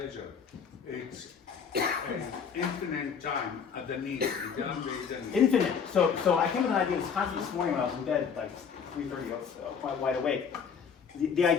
it's an infinite time at the need. Infinite. So I came with an idea this morning when I was in bed, like 3:30, quite wide awake. The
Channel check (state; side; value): quieter; right; 6.7 dB